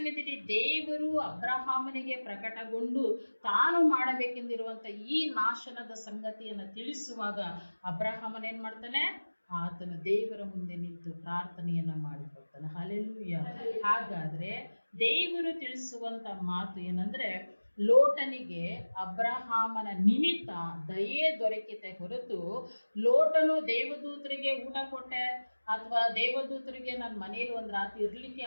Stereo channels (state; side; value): inverted; both; correlation -1.00